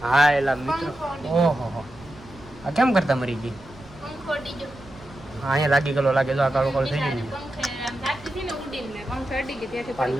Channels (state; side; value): noise; right; rumble, 21 dB below the sound